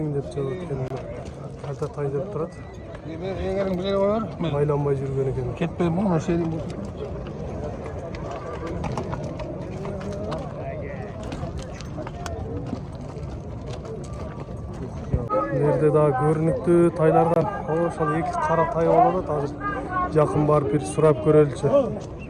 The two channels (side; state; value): both; identical; correlation 1.00